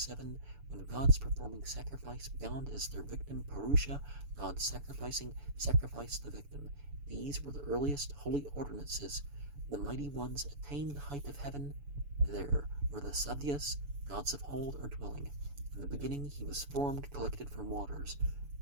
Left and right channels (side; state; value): left; late; 7.0 ms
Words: When gods performing sacrifice bound as their victim Purusha, gods sacrificing sacrificed the victim. These were the earliest holy ordinances. The mighty ones attained the height of heaven. There were the Sadyas, gods of old are dwelling. In the beginning he was formed, collected from waters,